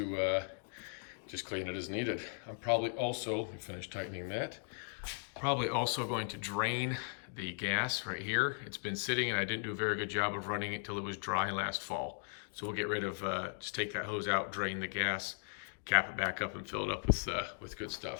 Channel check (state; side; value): silent; right; 53 dB below the other